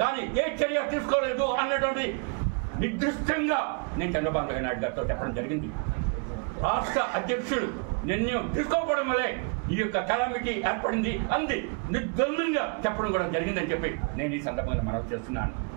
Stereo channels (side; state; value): left; quieter; 36.0 dB